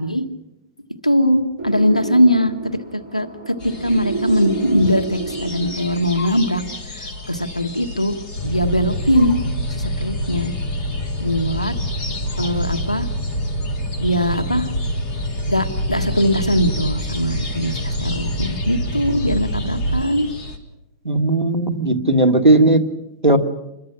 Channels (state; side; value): inverted; both; correlation -0.65